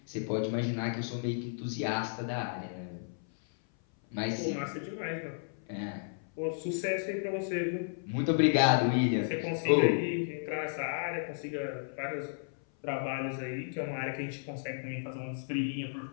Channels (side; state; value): right; silent; 56 dB below the other